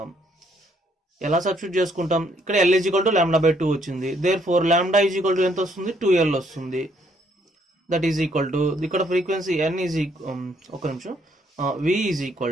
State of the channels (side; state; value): both; normal; correlation 0.69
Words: ఎలా సబ్స్టిట్యూట్ చేసుకుంటాం? ఇక్కడ L ఈజ్ ఈక్వల్ టు λ/2 వచ్చింది. దేర్ఫోర్ λ ఈజ్ ఈక్వల్ టు ఎంత వస్తుంది? 2L వస్తుంది. దట్ ఈజ్ ఈక్వల్ టు ఇక్కడ ఫ్రీక్వెన్సీ N ఈజ్ ఒక నిమిషం, V is